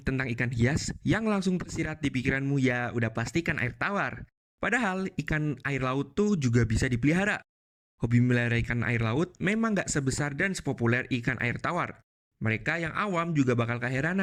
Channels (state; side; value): identical; both; correlation 1.00